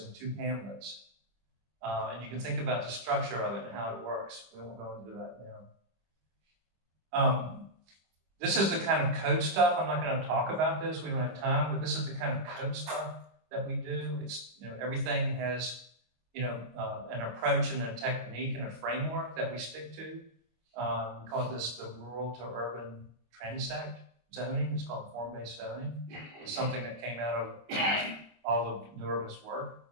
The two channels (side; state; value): left; late; 25 ms